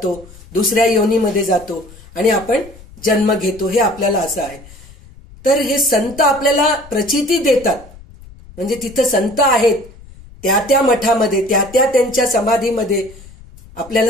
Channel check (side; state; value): left; noise; rumble, 21 dB below the sound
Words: दुसऱ्या योनीमध्ये जातो आणि आपण जन्म घेतो. हे आपल्याला असं आहे. तर हे संत आपल्याला प्रचिती देतात. म्हणजे तिथं संत आहेत त्या त्या मठामध्ये त्या त्यांच्या समाधीमध्ये